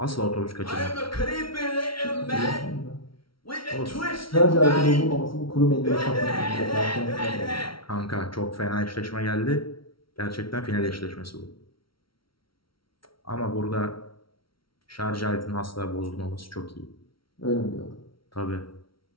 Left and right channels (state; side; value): late; right; 0.74 ms